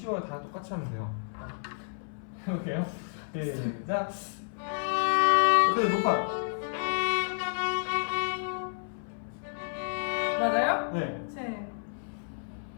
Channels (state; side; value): silent; right; 57 dB below the other